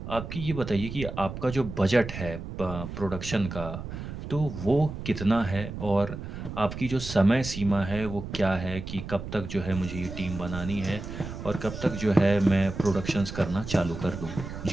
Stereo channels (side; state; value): right; noise; rumble, 8 dB below the sound